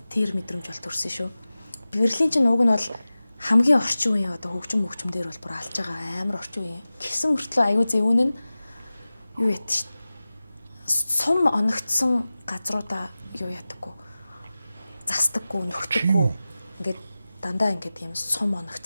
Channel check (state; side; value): inverted; both; correlation -0.96